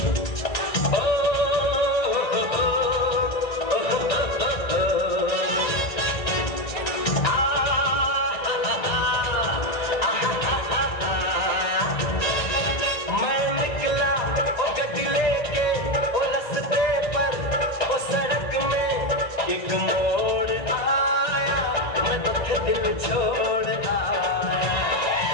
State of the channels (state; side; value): late; right; 1.8 ms